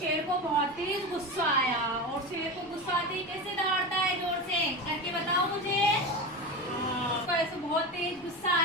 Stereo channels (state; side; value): noise; left; rumble, 26 dB below the sound